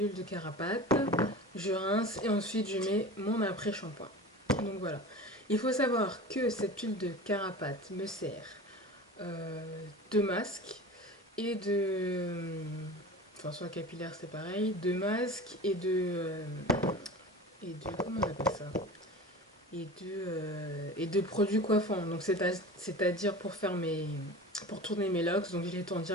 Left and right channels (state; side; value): normal; both; correlation 0.34